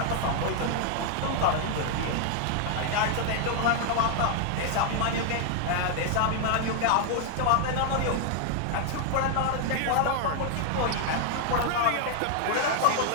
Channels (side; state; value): both; different; correlation 0.00